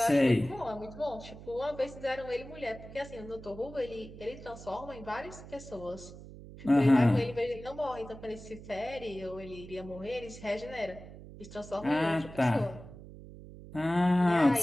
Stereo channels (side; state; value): right; noise; hum, 15 dB below the sound